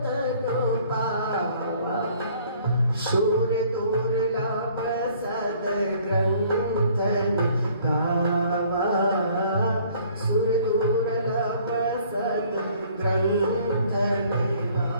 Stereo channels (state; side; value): inverted; both; correlation -0.57